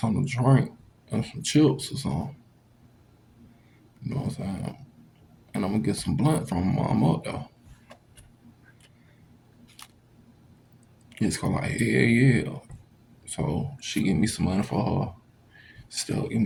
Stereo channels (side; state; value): both; identical; correlation 1.00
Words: to drink and some chips or something. You know what I'm saying? And I'm gonna get some blunt from my mom up there. It's gonna like, yeah. So she give me some money for her. Still give